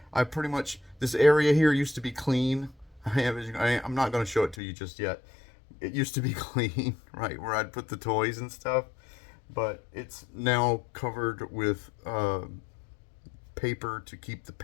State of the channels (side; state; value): right; drops out; at 4.5 s